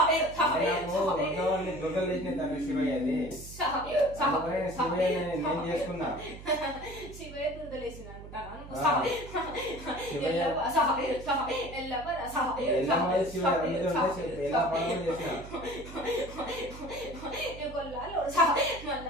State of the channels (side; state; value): right; noise; hum, 14 dB below the sound